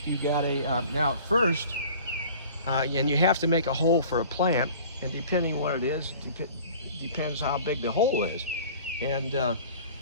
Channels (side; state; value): both; inverted; correlation -0.46